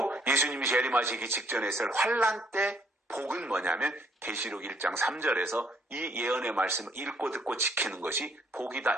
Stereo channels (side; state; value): both; normal; correlation 0.66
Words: 예수님이 재림하시기 직전에 있을 환난 때 복은 뭐냐면 계시록 1장 3절에서 이 예언의 말씀을 읽고 듣고 지키는 것이 복이다